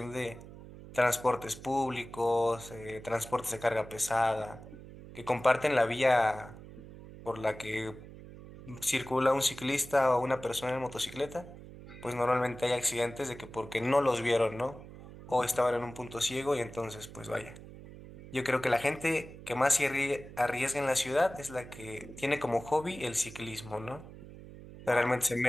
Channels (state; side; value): noise; right; hum, 16 dB below the sound